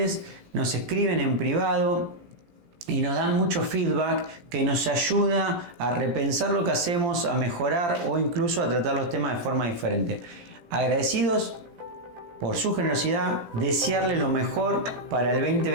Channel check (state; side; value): late; left; 17 ms